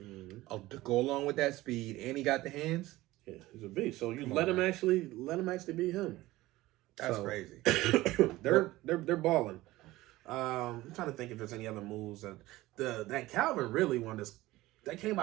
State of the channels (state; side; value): quieter; left; 17.9 dB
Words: go along with that speed, and he got the hands. Yeah, he's a beast. So you let him actually be him. That's crazy. they're balling. I'm trying to think if there's any other moves that Calvin really one that came